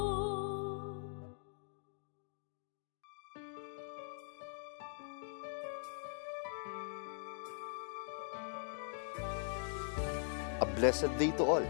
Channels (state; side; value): silent; right; digital silence